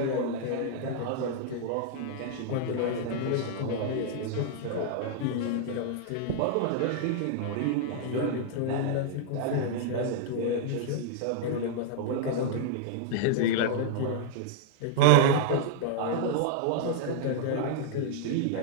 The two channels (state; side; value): different; both; correlation -0.01